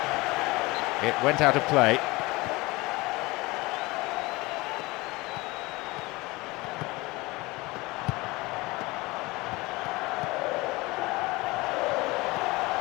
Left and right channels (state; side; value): quieter; right; 22.5 dB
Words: It went out of play.